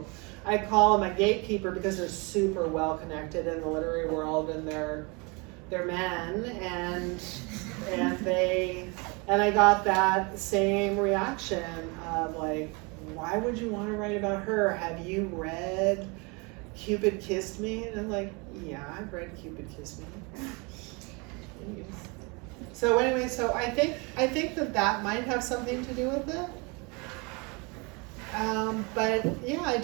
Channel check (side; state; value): left; quieter; 29.5 dB